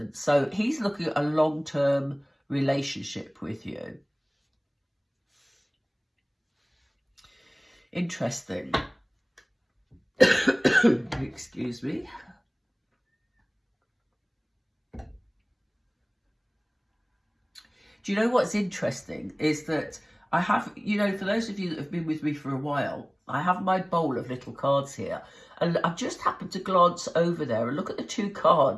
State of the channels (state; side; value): identical; both; correlation 1.00